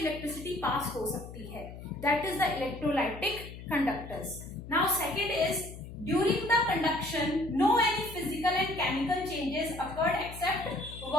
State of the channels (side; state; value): left; noise; hum, 13 dB below the sound